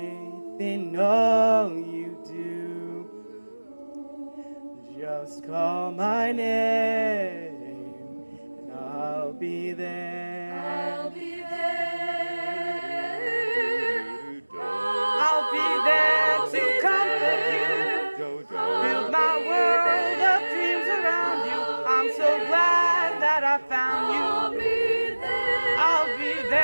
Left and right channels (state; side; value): inverted; both; correlation -1.00